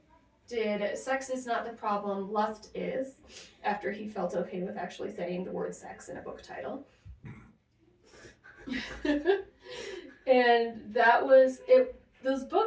did Sex Is Not the Problem, Lust Is, after he felt okay with actually saying the word sex in a book title. And that was it. Those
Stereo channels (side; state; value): both; identical; correlation 1.00